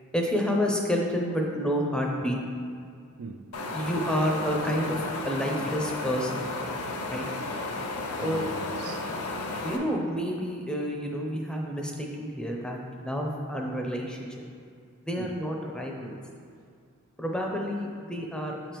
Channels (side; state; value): both; normal; correlation 0.52